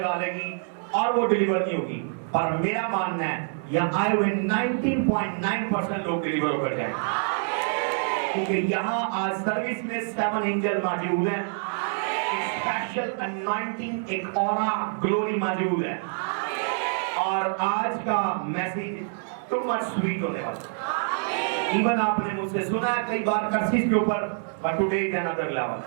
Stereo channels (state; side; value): silent; left; 61 dB below the other